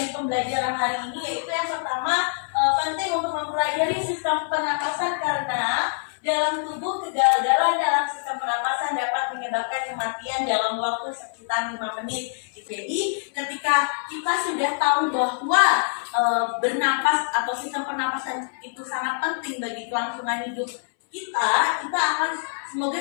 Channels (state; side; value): silent; right; 62 dB below the other